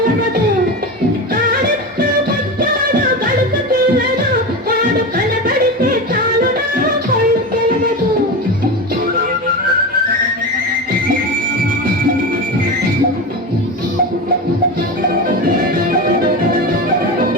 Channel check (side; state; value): both; normal; correlation 0.23